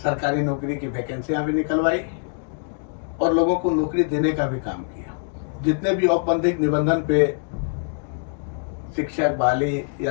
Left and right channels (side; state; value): right; silent; 63 dB below the other